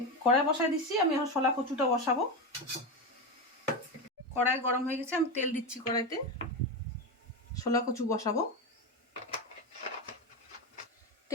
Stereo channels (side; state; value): both; normal; correlation 0.16